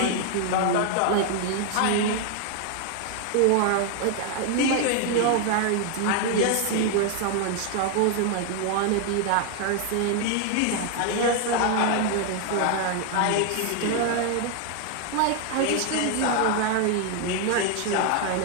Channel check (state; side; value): different; both; correlation 0.00